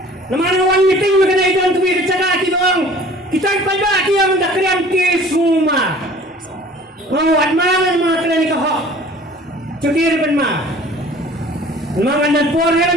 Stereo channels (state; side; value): normal; both; correlation 0.48